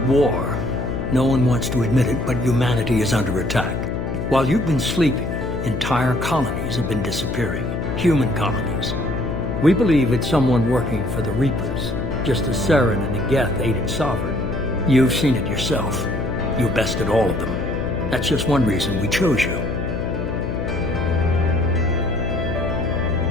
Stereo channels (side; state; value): left; noise; hum, 3 dB below the sound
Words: war. No one wants to admit it, but humanity is under attack. While you've been sleeping, entire colonies have been disappearing. Human colonies. We believe it's someone working for the Reapers, just as Saren and the Geth aided Sovereign. You've seen it yourself. You bested all of them. That's just one reason we chose you.